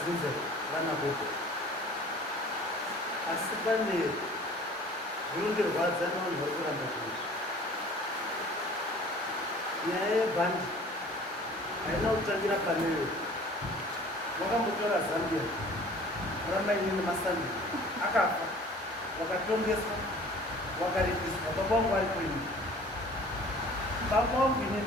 vana voko asi pane zvinondirwadza nevanhu vari kuramba zvinizvi. Nyaya yebhandi haina kutangira paneyo. Vakambotora Zambia ramainini Masandi akafa, wakatongeswa, wakaripiswa. Baba vangu vari kwenyu, baba vangu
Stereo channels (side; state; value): both; normal; correlation 0.48